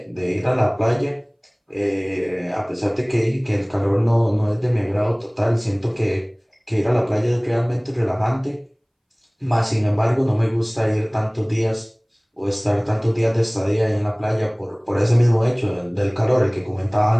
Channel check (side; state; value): both; identical; correlation 1.00